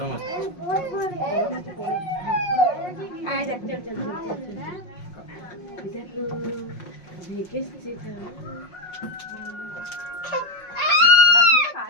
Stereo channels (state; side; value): late; right; 5.5 ms